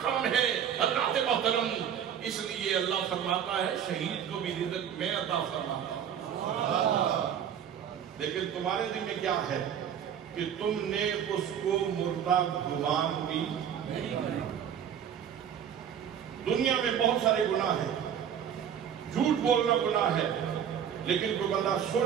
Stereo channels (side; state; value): left; quieter; 8.8 dB